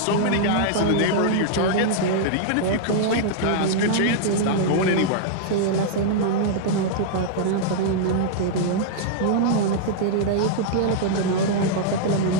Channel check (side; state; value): both; different; correlation -0.02